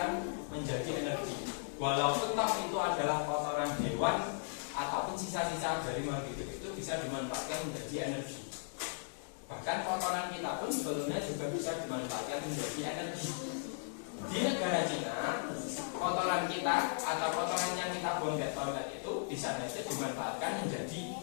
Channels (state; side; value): silent; right; digital silence